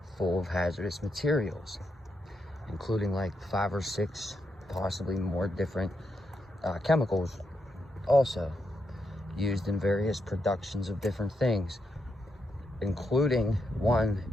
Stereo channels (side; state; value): both; normal; correlation 0.82